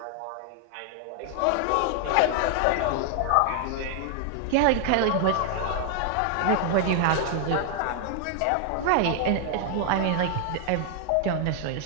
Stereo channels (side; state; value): both; different; correlation 0.00